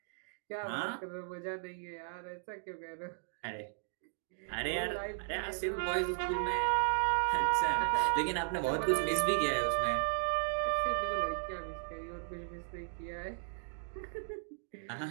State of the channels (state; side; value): silent; left; digital silence